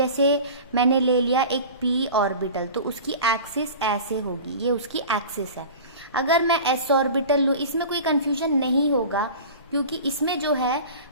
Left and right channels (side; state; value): both; inverted; correlation -0.37